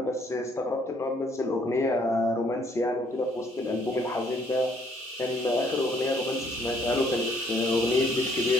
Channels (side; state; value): both; normal; correlation 0.65